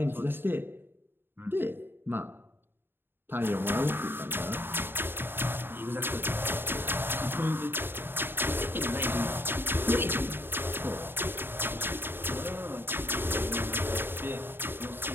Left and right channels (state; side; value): late; left; 0.10 ms